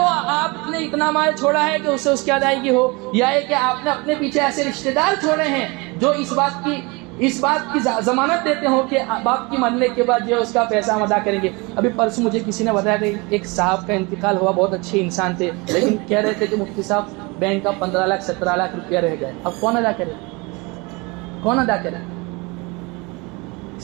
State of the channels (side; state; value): left; quieter; 26.8 dB